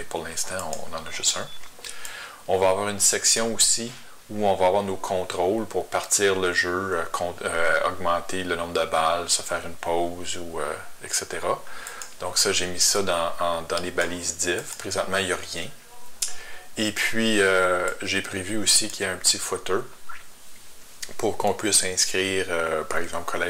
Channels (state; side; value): identical; both; correlation 1.00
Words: pour l'instant, on en a juste un. On va avoir une section aussi où on va avoir nos contrôles pour partir le jeu, augmenter le nombre de balles, se faire une pause, etc. Donc ça, j'ai mis ça dans les balises div. Présentement, il n'y a rien. Et puis, j'ai prévu aussi qu'il y ait un petit footer pour qu'on puisse inscrire, par exemple,